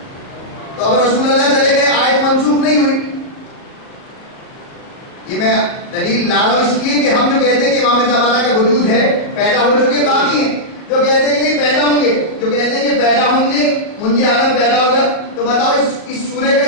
تو اگر رسول اللہ چلے گئے آیت منسوخ نہیں ہوئی. یہ میں دلیل لا رہا ہوں اس لیے کہ ہم جو کہتے ہیں کہ امام زمانہ کا وجود ہے، پیدا ہو چکے باقی ہیں، جو کہتے ہیں کہ نہیں پیدا ہوں گے، جو کہتے ہیں کہ پیدا ہوں گے منجی عالم پیدا ہوگا. تو بتاؤ اس سورہ کا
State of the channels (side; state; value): right; late; 38 ms